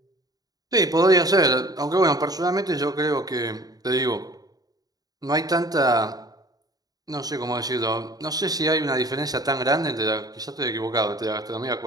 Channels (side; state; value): left; late; 0.18 ms